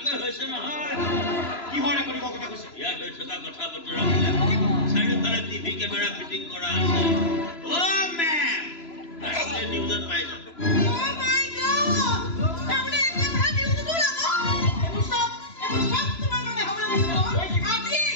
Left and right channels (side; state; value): right; late; 3.0 ms